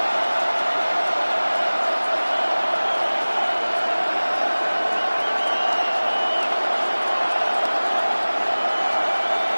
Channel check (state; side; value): inverted; both; correlation -1.00